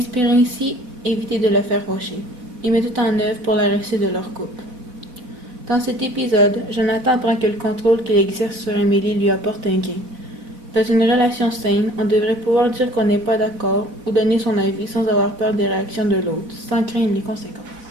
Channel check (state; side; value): late; left; 4.0 ms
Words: ainsi éviter de le faire fâcher et met tout en œuvre pour la réussite de leur couple. Dans cet épisode, Jonathan apprend que le contrôle qu'il exerce sur Amélie lui apporte un gain. Dans une relation saine, on devrait pouvoir dire qu'on n'est pas d'accord ou donner son avis sans avoir peur des réactions de l'autre, sans craindre les conséquences.